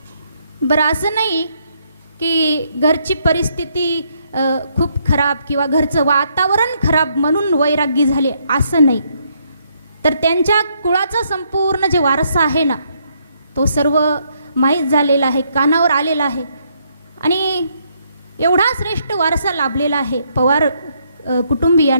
बरं, असं नाही की घरची परिस्थिती खूप खराब किंवा घरचं वातावरण खराब म्हणून वैराग्य झाले, असं नाही. तर त्यांच्या कुळाचा संपूर्ण जे वारसा आहे ना, तो सर्व माहीत झालेला आहे, कानावर आलेला आहे. आणि एवढा श्रेष्ठ वारसा लाभलेला आहे पवार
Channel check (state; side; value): inverted; both; correlation -0.73